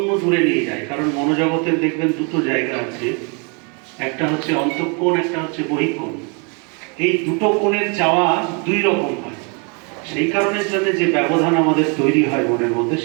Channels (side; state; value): left; quieter; 34.5 dB